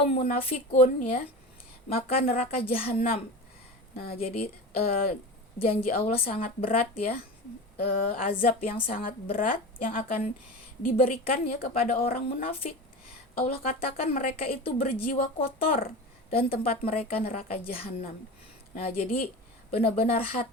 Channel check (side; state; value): both; normal; correlation 0.29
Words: munafikun ya, maka neraka jahanam. Nah, jadi janji Allah sangat berat ya, azab yang sangat berat yang akan diberikan ya kepada orang munafik. Allah katakan mereka itu berjiwa kotor dan tempat mereka neraka jahanam. Nah, jadi benar-benar